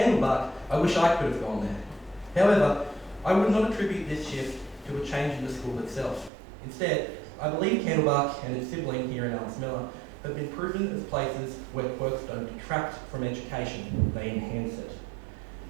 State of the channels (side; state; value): left; drops out; at 6.3 s